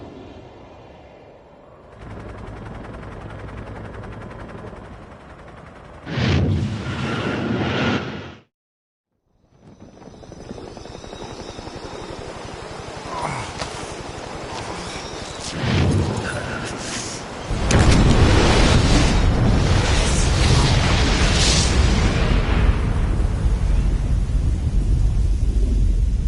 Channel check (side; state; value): both; identical; correlation 1.00